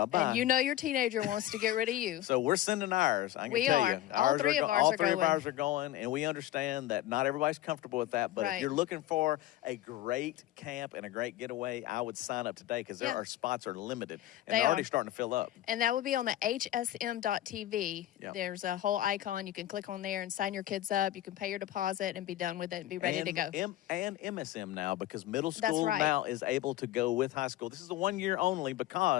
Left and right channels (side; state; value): right; quieter; 14.2 dB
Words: And you know your teenager wants to get rid of you. So we're sending ours. I can We tell are. you. All three of ours all are three going. of ours are going, and we understand that not everybody's comfortable with that. But if Right. you're looking for a great camp and a great getaway, I would sign up today, because Yeah. our spots are limited, and They they're already are. starting to fill up. And that would be on the hsm.tv. Yeah. There's a whole icon. You can click on there and sign your kids up. You can pay your deposit and be done with it and be ready to go. And MSM now, because middle That's school right. now is able to go with high school. This is a 1 year only,